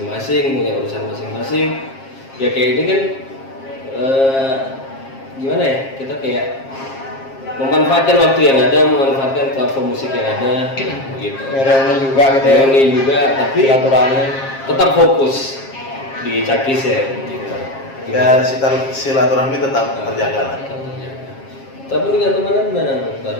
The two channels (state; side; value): late; right; 7.5 ms